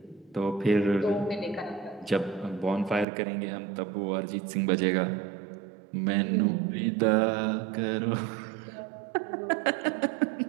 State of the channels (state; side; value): drops out; left; at 3.1 s